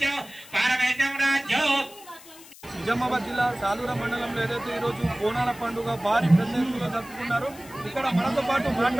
पारमेश्वरं राज्यं। నిజామాబాద్ జిల్లా సాలూర మండలంలో ఏదైతే ఈరోజు బోనాల పండుగ భారీ పెద్ద ఎత్తులో జరుపుకున్నారు. ఇక్కడ మనతో పాటు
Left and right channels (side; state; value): left; noise; hiss, 20 dB below the sound